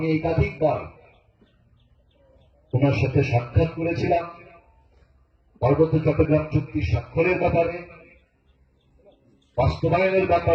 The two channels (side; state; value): both; identical; correlation 1.00